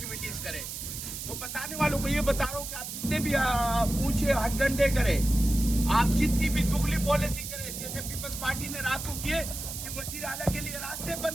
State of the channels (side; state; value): right; noise; hiss, 7 dB below the sound